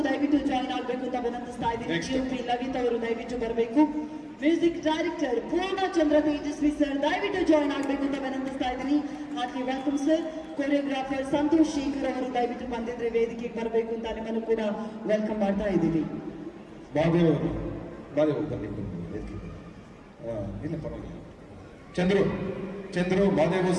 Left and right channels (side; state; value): both; identical; correlation 1.00